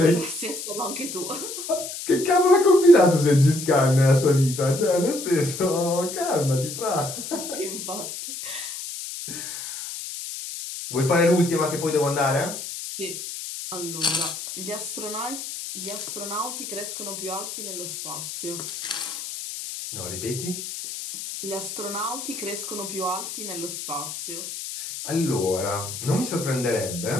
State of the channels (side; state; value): left; noise; hiss, 8 dB below the sound